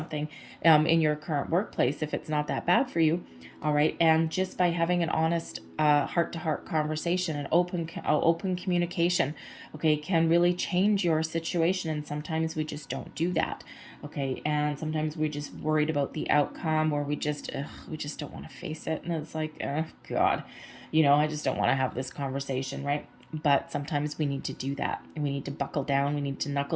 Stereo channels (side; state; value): both; identical; correlation 1.00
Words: in your current workplace if it's not that bad for you. All right, and just by having an honest heart-to-heart conversation, an open communication, okay, can really change your situation. And sometimes we just don't do that, okay, and sometimes we just worried about the outcome, or we just don't want to face it, and it's like, oh God, I just don't want to have this conversation, right? But sometimes we need to do that, and we need to buckle down, we need to